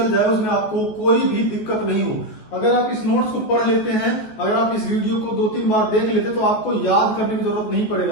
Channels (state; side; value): late; right; 14 ms